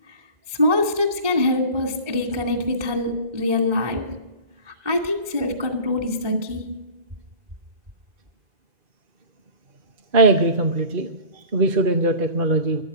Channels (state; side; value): late; left; 1.9 ms